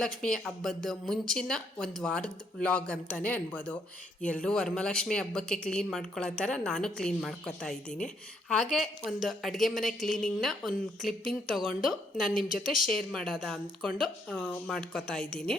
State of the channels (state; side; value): normal; both; correlation 0.72